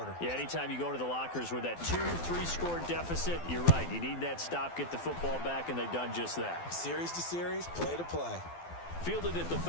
Yeah, anytime you go to the lockers with that 2-3 score deficit, you're right. You need that stop, get the football back, and they've done just that. Series to series, play to play. Fielded at the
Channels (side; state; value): right; late; 12 ms